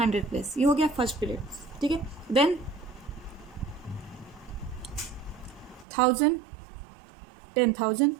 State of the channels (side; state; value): left; drops out; at 5.9 s